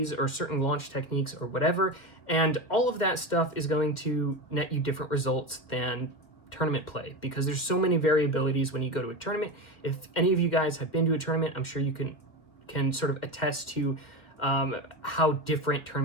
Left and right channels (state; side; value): late; right; 1.9 ms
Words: or certain launch techniques or whatever. And all of that stuff is going to net you different results than tournament play, because there's so many variabilities when you go to a tournament. If any of you guys have been to a tournament, I'm sure you can sort of attest to how different